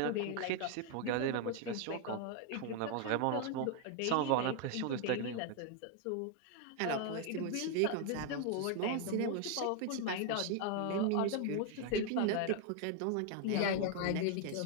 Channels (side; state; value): both; different; correlation 0.00